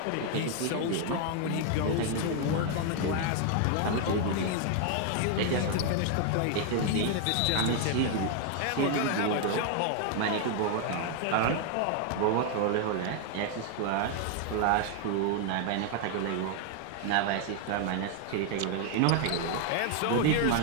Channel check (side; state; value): both; different; correlation 0.00